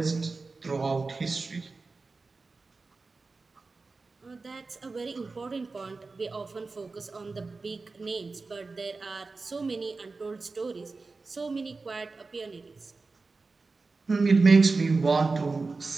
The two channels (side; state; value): left; quieter; 3.9 dB